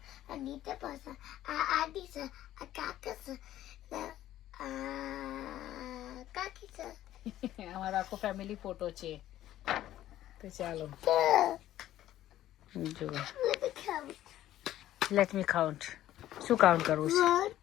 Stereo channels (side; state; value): right; quieter; 13.3 dB